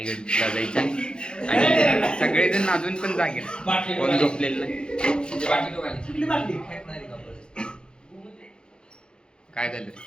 जायचा आणि सगळेजण अजून पण जागे, कोण झोपलेलं नाही. काय झालं?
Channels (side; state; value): right; late; 0.049 ms